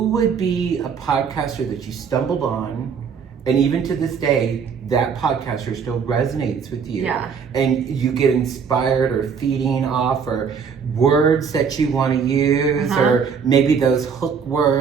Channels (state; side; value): quieter; left; 6.4 dB